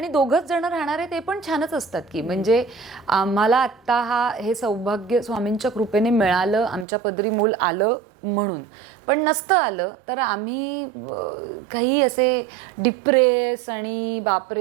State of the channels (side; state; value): left; drops out; at 6.9 s